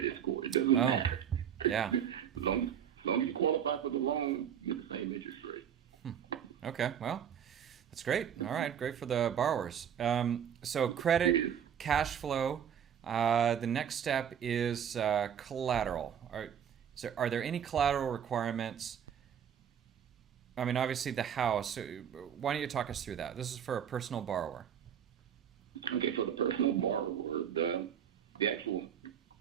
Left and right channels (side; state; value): left; quieter; 8.7 dB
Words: score. It doesn't matter. Yeah. As long as you qualify for the loan, you get the same interest rate. Okay, well, that's great. All right, great for the borrowers. So credit, cash flow. The next step is collateral. Are there any collateral requirements? I mean, obviously the house. Why don't you talk us through that? This is for a personal borrower. Okay, for the personal borrower, the actual,